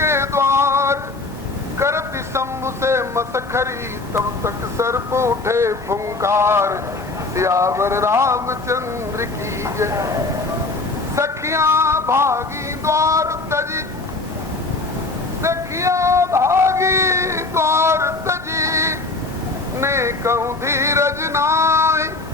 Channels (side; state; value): right; quieter; 3.4 dB